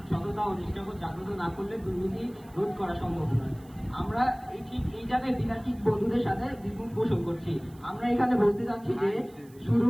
সততা ও নিষ্ঠাবোধ জাগ্রত না করলে দুর্নীতি রোধ করা সম্ভব নয়। আমরা এই জায়গায় বিতার্কিক বন্ধুদের সাথে দ্বিমত পোষণ করছি। আমরা এখানে বলতে চাচ্ছি যে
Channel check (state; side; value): noise; right; hiss, 28 dB below the sound